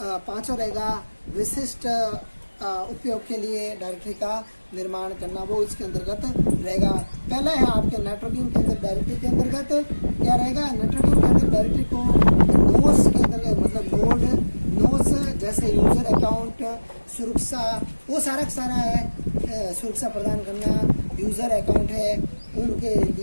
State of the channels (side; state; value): both; inverted; correlation -1.00